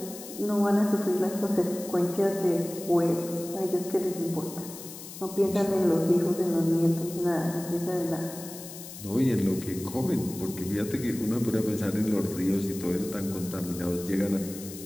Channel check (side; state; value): left; noise; hiss, 13 dB below the sound